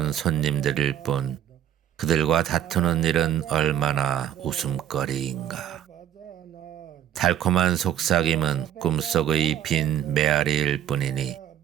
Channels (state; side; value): quieter; left; 10.6 dB